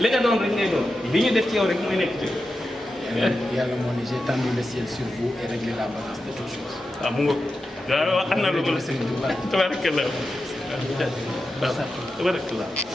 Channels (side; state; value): both; normal; correlation 0.90